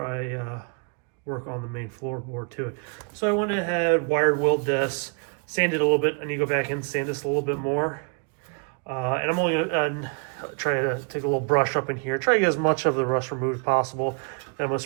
I work on the main floorboard to it. So I went ahead, wired weld this, sanded a little bit. I need to go back and sand this a little bit more. And I'm only gonna try to take a little brush up in here, try to get as much of the rust removed as possible. Then I'm gonna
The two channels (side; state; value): left; quieter; 38.2 dB